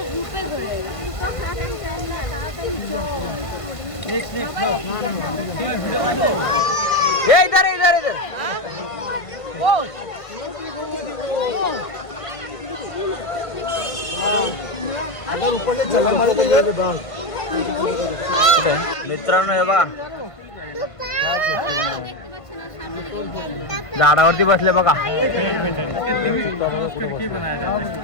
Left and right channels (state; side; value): late; right; 1.5 ms